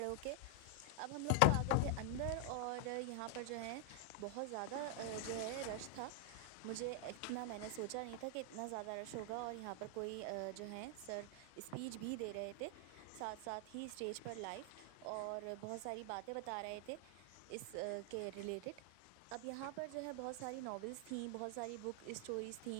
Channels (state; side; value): different; both; correlation 0.00